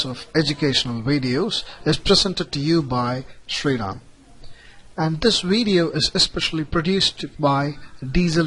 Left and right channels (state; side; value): identical; both; correlation 1.00